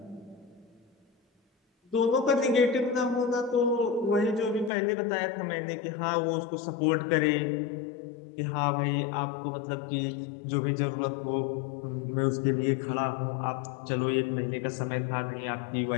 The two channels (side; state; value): right; drops out; at 4.7 s